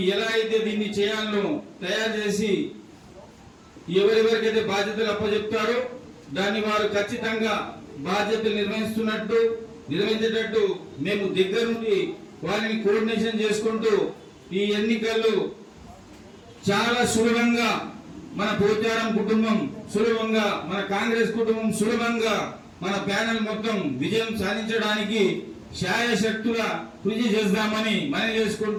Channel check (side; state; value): both; identical; correlation 1.00